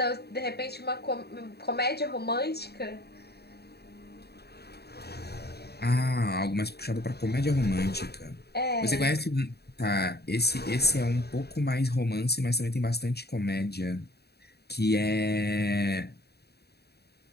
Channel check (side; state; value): right; late; 0.47 ms